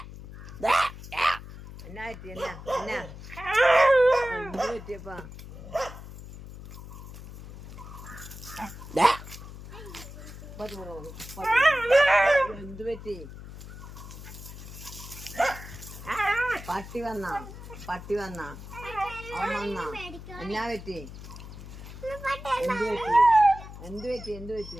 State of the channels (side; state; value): left; noise; hum, 13 dB below the sound